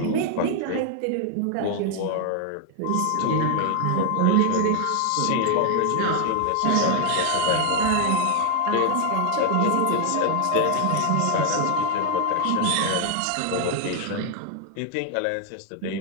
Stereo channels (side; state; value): both; different; correlation 0.00